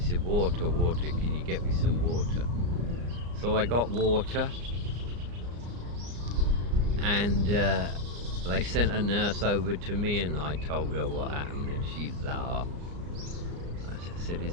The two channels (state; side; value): late; left; 34 ms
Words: water, water, can you get me some water? So I got water, and they sent a nurse over to me, and I told her what happened, and she laughed. I said, is